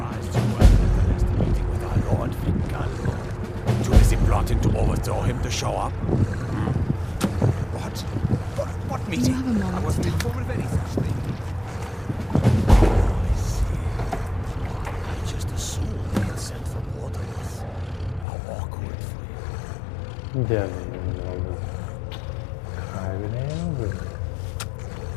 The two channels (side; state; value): right; drops out; at 18.2 s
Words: you weren't at the last meeting with our Lord Fingal. Too busy plotting to overthrow him to show up? What meeting? Do you have a moment I wasn't to talk? informed of any such thing. I see. I just assumed they had sent for Waterless. How awkward for you. Canım oldu. Kaybedeyim mi?